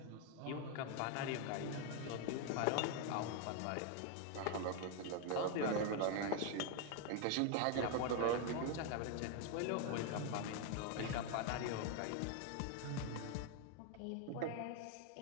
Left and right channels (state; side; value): different; both; correlation 0.00